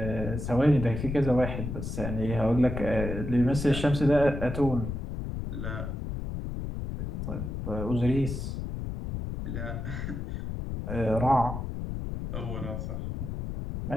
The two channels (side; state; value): left; noise; rumble, 5 dB below the sound